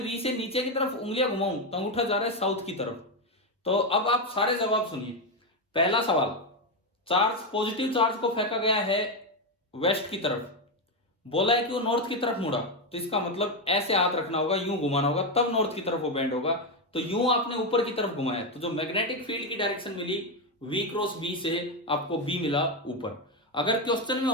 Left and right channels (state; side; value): normal; both; correlation 0.08